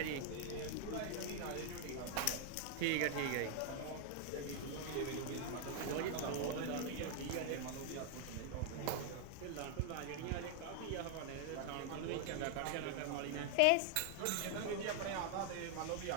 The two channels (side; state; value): both; different; correlation 0.00